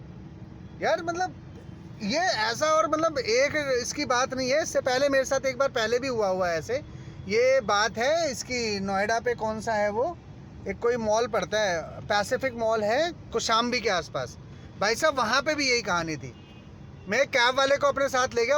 यार। मतलब ये ऐसा, और मतलब एक इसकी बात नहीं है, इससे पहले मेरे साथ एक बार पहले भी हुआ है ऐसे। ये बात है इसकी, नोएडा पे कौन सा है वो, एक कोई मॉल पड़ता है, पैसिफिक मॉल है कौशाम्बी के आसपास। भाई साहब वहाँ पे भी यही कहानी थी। मैं एक कैब वाले को अपने साथ ले गया,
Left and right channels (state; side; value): identical; both; correlation 1.00